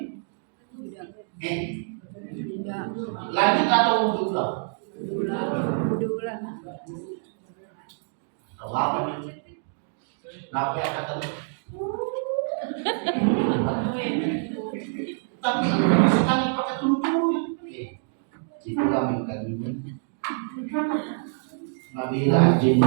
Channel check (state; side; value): silent; left; digital silence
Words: Lanjut atau wudhu ulang? Tahu apa nih? Kenapa ya kata tapi sekali pakai tulu-tulu. Itu kami kali ini. Nabila anjing